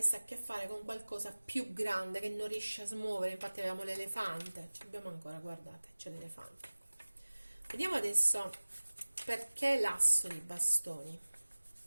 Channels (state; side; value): inverted; both; correlation -1.00